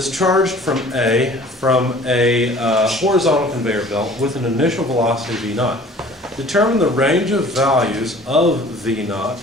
from a horizontal conveyor belt with an initial velocity v naught. Determine the range of values of v naught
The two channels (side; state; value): both; normal; correlation 0.49